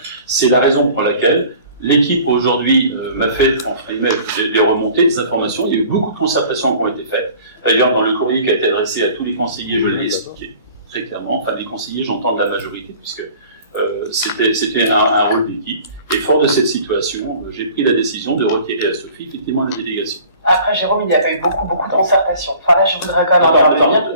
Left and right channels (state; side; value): inverted; both; correlation -0.48